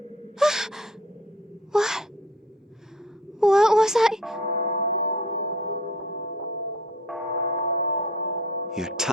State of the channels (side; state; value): both; normal; correlation 0.49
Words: What? What was I? Your